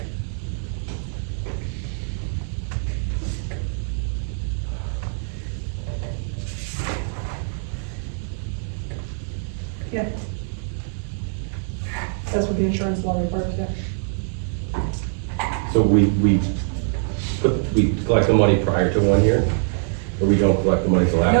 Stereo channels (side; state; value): left; silent; 63 dB below the other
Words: Yeah. That's what the insurance law requires, yeah. So we collect the money prior to 1 year, or we don't collect the money till after